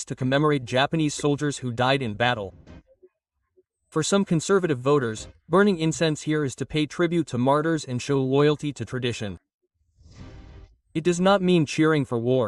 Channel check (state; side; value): identical; both; correlation 1.00